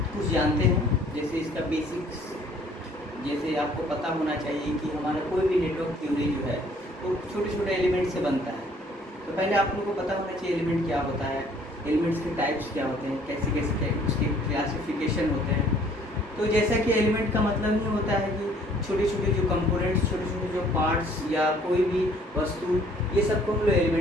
कुछ जानते हैं, जैसे इसका बेसिक्स। जैसे आपको पता होना चाहिए कि हमारा कोई भी नेटवर्क थ्योरी जो है वो छोटे छोटे एलिमेंट से बनता है। तो पहले आप लोगों को पता होना चाहिए एलिमेंट क्या होता है, एलिमेंट्स के टाइप्स क्या होते हैं, कैसे कैसे उसके क्लासिफिकेशन होते हैं। तो जैसा कि एलिमेंट का मतलब ही होता है कि छोटे छोटे जो कंपोनेंट्स, छोटे छोटे जो पार्ट्स या कोई भी वस्तु, ये सबको हम लोग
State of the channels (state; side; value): normal; both; correlation 0.58